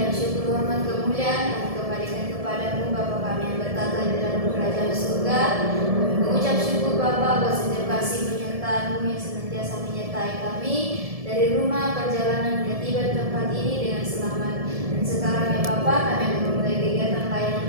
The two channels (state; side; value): late; left; 1.7 ms